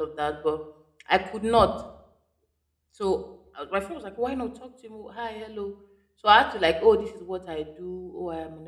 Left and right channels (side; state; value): both; identical; correlation 1.00